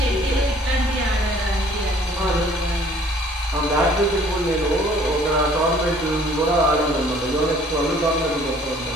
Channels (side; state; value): both; normal; correlation 0.56